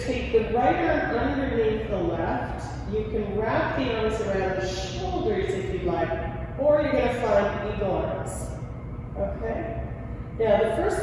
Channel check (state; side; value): identical; both; correlation 1.00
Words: take the right arm underneath the left. You can wrap the arms around the shoulders if you like, or you're going to find eagle arms. Okay? Now, the first